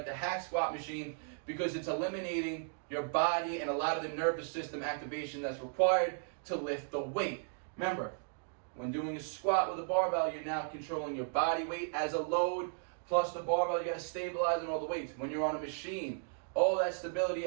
the hack squat machine, because it's eliminating your body and a lot of the nervous system activation that's required to lift the weight. Remember, When doing a squat with a barbell, you're now controlling your body weight as a load, plus the barbell, you gotta stabilize on all the weights. When you're on a machine, all that stability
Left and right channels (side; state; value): left; silent; digital silence